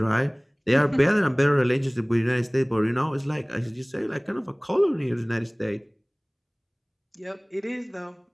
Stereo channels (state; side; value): identical; both; correlation 1.00